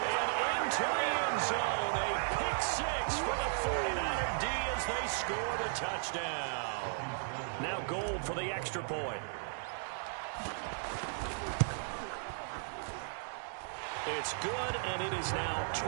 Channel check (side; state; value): left; silent; digital silence